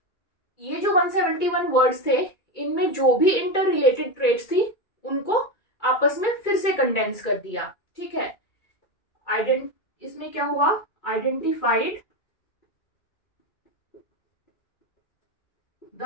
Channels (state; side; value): late; right; 2.3 ms